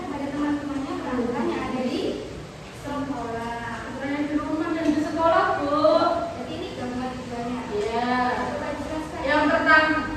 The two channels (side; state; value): both; identical; correlation 1.00